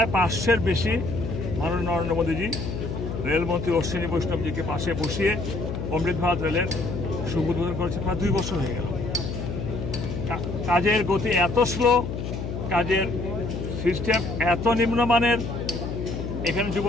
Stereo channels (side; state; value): left; noise; hum, 5 dB below the sound